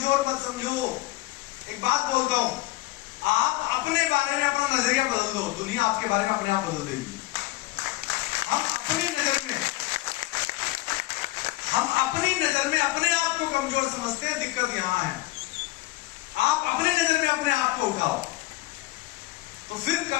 मत समझो। एक बात बोलता हूं, आप अपने बारे में अपना नजरिया बदल दो, दुनिया आपके बारे में अपने आप बदल देगी। हम अपनी नजर में अपने आप को कमजोर समझते हैं, दिक्कत यहां है। आप अपनी नजर में अपने आप को उठाओ, तो फिर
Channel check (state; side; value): quieter; right; 18.8 dB